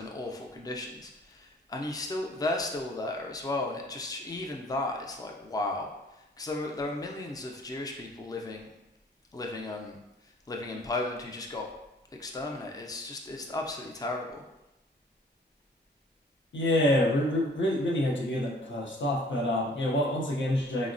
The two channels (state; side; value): normal; both; correlation 0.55